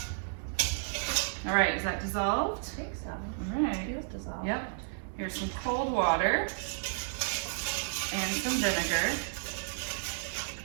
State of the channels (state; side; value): silent; left; digital silence